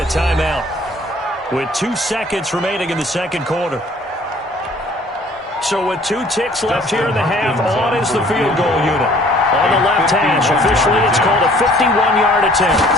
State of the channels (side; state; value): both; normal; correlation 0.55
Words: a timeout with 2 seconds remaining in the 2nd quarter. So with 2 ticks left here in the half, on is the field goal unit. On the left hash, officially it's called a 51-yard attempt.